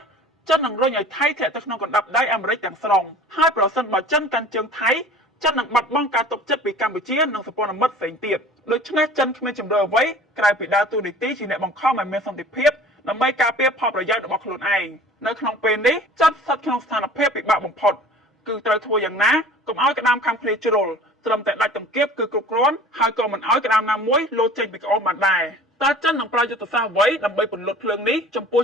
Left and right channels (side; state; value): both; normal; correlation 0.45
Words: ចិននឹងរុញឲ្យថៃធាក់ទៅក្នុងកណ្ដាប់ដៃអាមេរិកទាំងស្រុងហើយប្រសិនបើចិនកាន់ជើងថៃចិននឹងបាត់បង់ការទុកចិត្តពីកម្ពុជានិងសម្ព័ន្ធមិត្តផ្សេងទៀតដូច្នេះចិនគ្មានជំរឿអ្វីក្រៅពីដើរតួនាទីជាអ្នកបង្ខំឲ្យមានសន្តិភាពដើម្បីការពារផលប្រយោជន៍របស់ខ្លួនឯងនៅក្នុងពេលនេះចិនស្ថិតក្នុងស្ថានភាពពិបាកបំផុតគឺត្រូវធ្វើយ៉ាងណាកុំឲ្យក្តាមខាំឃ្លាជ្រុលត្រឹមតែដាច់ទង្គៀបគឺគ្រប់គ្រាន់ហើយក៏មិនឲ្យក្តាមណាមួយលោតចេញពីក្អមបានដែរតើចិននឹងប្រើយុទ្ធសាស្ត្រអ្វីដើម្បីពន្លត់ភ្លើងនេះចំពោះ